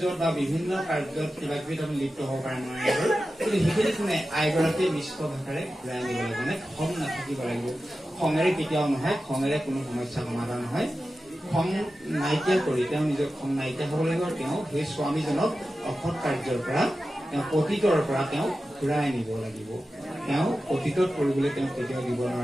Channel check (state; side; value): normal; both; correlation 0.93